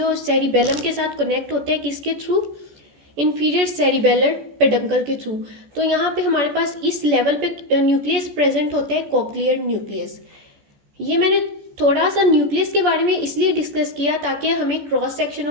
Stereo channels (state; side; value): late; left; 14 ms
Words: सेरिबेलम के साथ कनेक्ट होते हैं, किसके थ्रू, इंफीरियर सेरिबेलर पेडंकल के थ्रू। तो यहाँ पे हमारे पास इस लेवल पे न्यूक्लियस प्रेजेंट होता है, कॉक्लियर न्यूक्लियस। ये मैंने थोड़ा सा न्यूक्लियस के बारे में इसलिए डिस्कस किया ताकि हमें क्रॉस सेक्शन